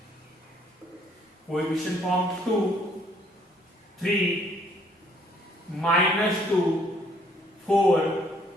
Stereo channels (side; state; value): both; normal; correlation 0.64